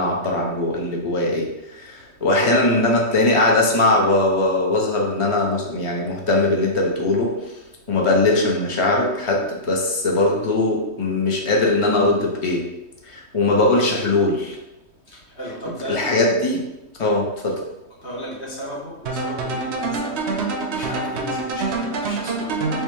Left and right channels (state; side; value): late; left; 3.1 ms